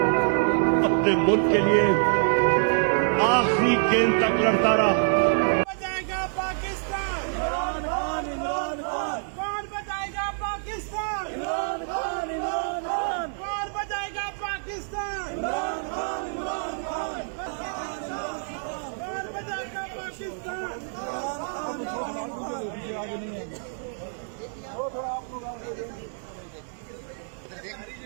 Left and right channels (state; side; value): silent; left; 59 dB below the other